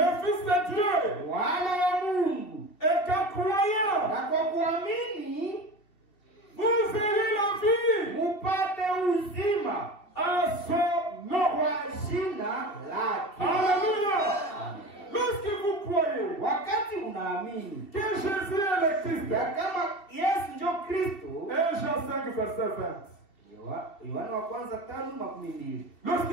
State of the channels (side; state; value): right; late; 2.7 ms